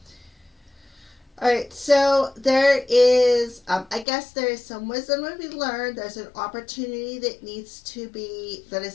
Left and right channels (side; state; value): right; drops out; at 4.0 s